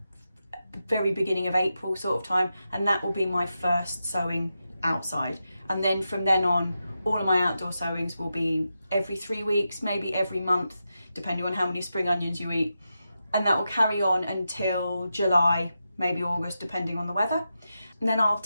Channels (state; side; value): inverted; both; correlation -0.89